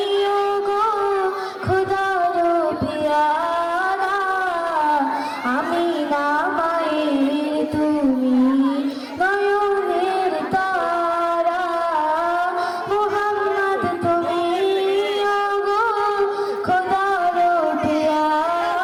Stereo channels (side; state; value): both; identical; correlation 1.00